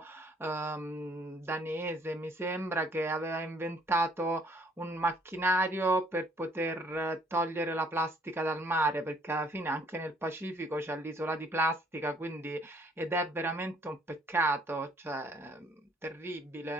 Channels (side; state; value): both; normal; correlation 0.63